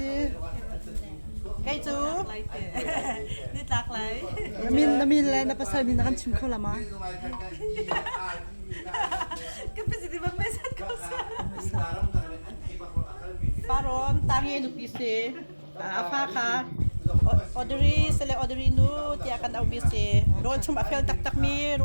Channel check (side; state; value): both; inverted; correlation -1.00